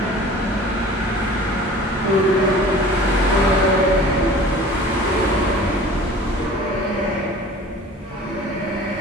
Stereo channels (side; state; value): both; normal; correlation 0.44